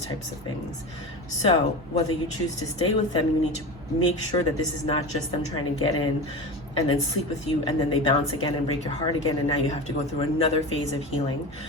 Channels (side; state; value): both; normal; correlation 0.27